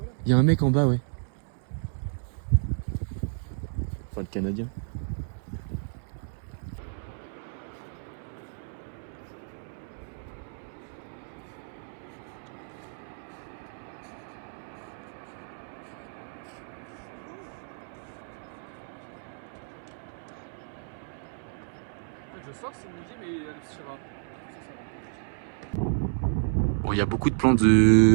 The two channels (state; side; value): silent; left; 57 dB below the other